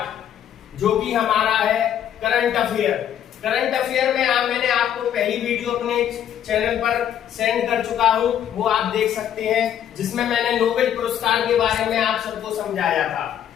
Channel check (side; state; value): right; quieter; 10.0 dB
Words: जो कि हमारा है करंट अफेयर। करंट अफेयर में मैंने आपको पहली वीडियो अपने चैनल पर सेंड कर चुका हूं, वो आप देख सकते हैं, जिसमें मैंने नोबेल पुरस्कार के बारे में आप सबको समझाया था।